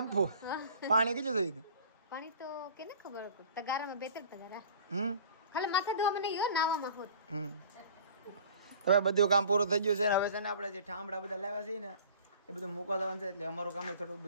પાણી કેટલું જોયું? પાણી તો કેને ખબર તગારામાં 2-3 તગારા. ખાલી માથે ધોવા મને યો નાવામાં હોત. હવે બધું કામ પૂરું થઈ ગયું છે ને હવે છે ને આપણે જે ઠામડા બધા લાવ્યા છે ને એ બધું મૂકવા જવાનું છે. એટલે અમારું કામ થોડું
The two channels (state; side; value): inverted; both; correlation -0.46